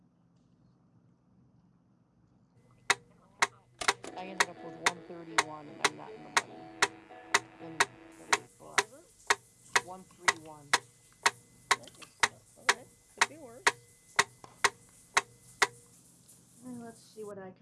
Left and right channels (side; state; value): both; identical; correlation 1.00